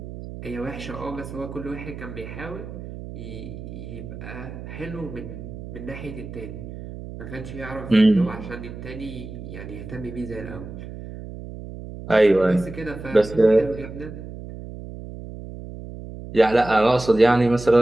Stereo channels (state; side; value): noise; right; hum, 11 dB below the sound